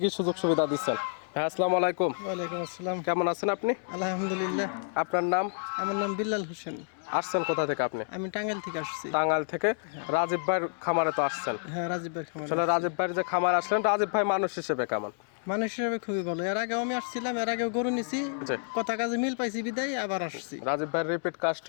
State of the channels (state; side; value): silent; right; digital silence